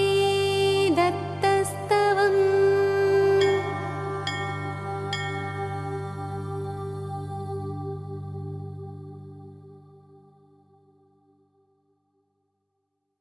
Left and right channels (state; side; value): identical; both; correlation 1.00